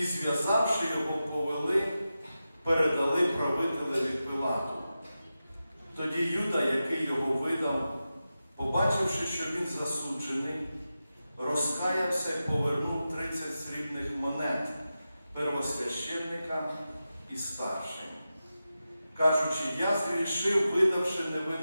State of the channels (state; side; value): inverted; both; correlation -0.92